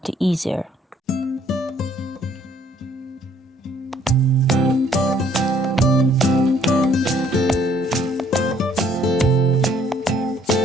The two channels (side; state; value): both; normal; correlation 0.63